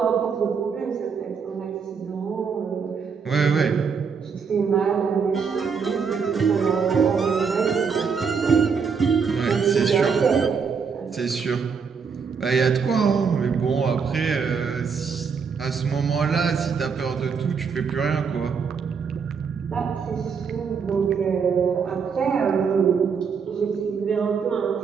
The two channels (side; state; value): left; quieter; 5.9 dB